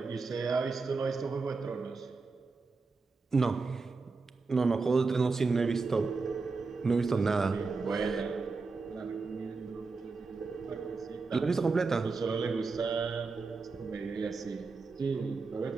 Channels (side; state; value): left; quieter; 4.2 dB